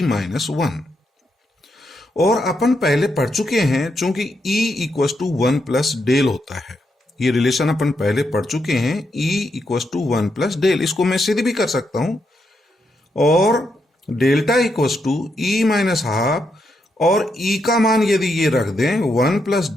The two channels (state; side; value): normal; both; correlation 0.81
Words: माइनस वन। और अपन पहले पढ़ चुके हैं, चूंकि E equals to one plus del होता है, ये रिलेशन अपन पहले पढ़ चुके हैं, E equals to one plus del, इसको मैं सीधे भी कर सकता हूं, और delta equals to E minus half, और ई का मान यदि ये रख दें one plus